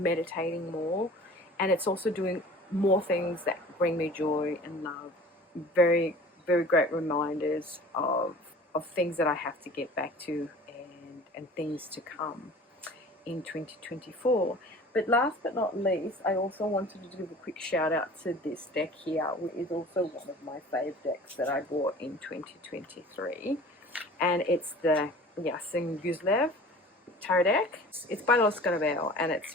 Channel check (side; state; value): both; normal; correlation 0.43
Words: more, and it's also doing more things that bring me joy and love. Very, very great reminders of things that I have to get back to, and things to come in 2024. But last but not least, I also wanted to give a quick shout out to this deck here, which is also one of my fave decks that I bought in 2023, and it's the Yasin Guzlev tarot deck. It's by Los Scarabeo, and